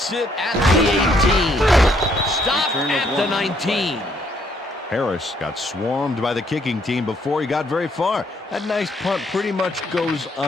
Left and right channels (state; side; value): normal; both; correlation 0.69